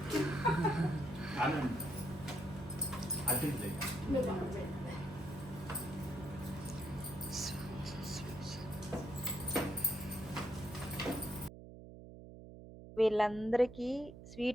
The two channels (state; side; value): noise; right; hum, 14 dB below the sound